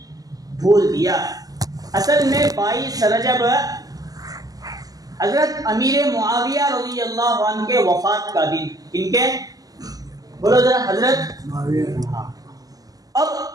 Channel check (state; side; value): late; left; 0.18 ms